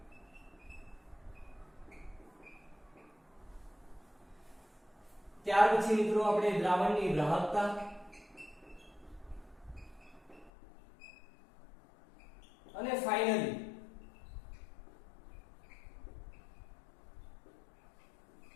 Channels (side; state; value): right; drops out; at 10.5 s